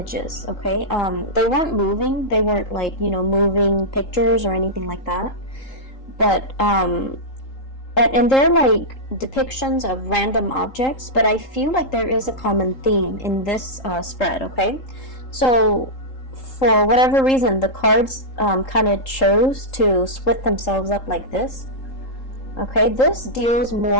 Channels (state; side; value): late; right; 3.8 ms